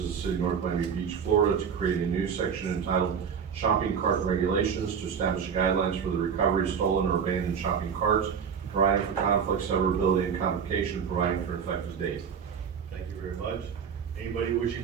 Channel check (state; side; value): quieter; left; 7.0 dB